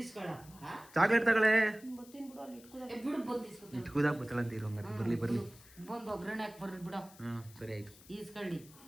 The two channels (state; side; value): noise; left; hiss, 22 dB below the sound